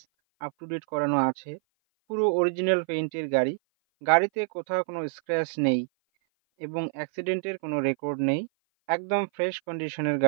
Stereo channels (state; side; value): silent; left; 56 dB below the other